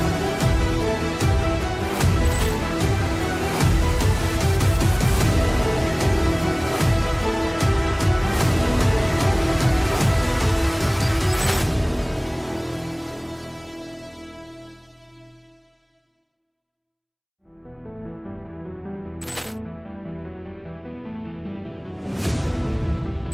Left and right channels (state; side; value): identical; both; correlation 1.00